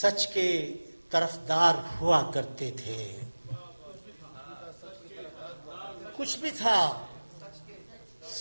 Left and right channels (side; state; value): both; inverted; correlation -1.00